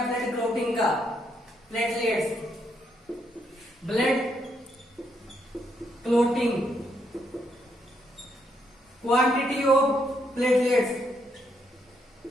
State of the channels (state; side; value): normal; both; correlation 0.76